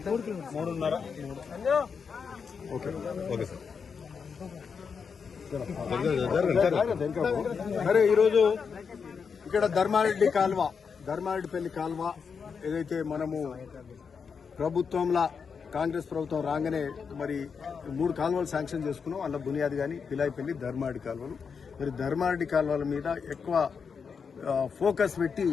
3.5 ఓకే ఓకే సార్. సరే, ఈరోజు ఇక్కడ ధర్మారెడ్డిపల్లి కాల్వ ఏదైతే మనము ప్రభుత్వంలో కాంగ్రెస్ ప్రభుత్వం రాగానే మరి 3 కాలువలు శాంక్షన్ చేసుకున్నాం. అందులో బునియాది కానీ పిలాయిపల్లి ధర్మారెడ్డి కాలువలు. మరి ధర్మారెడ్డి కాలువల మీద ఎక్కువ ఫోకస్ పెట్టి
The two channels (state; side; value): quieter; right; 6.0 dB